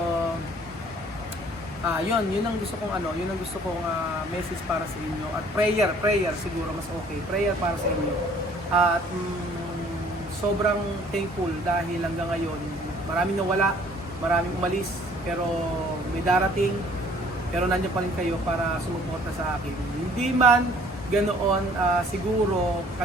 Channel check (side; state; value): both; normal; correlation 0.57